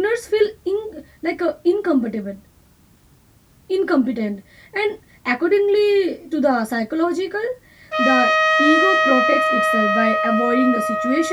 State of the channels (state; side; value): identical; both; correlation 1.00